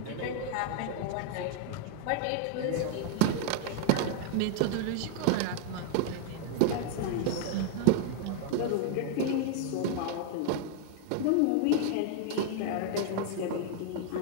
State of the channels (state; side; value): different; both; correlation 0.00